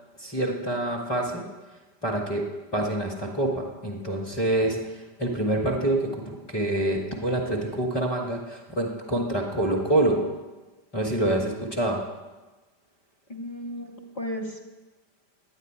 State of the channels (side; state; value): right; late; 5.1 ms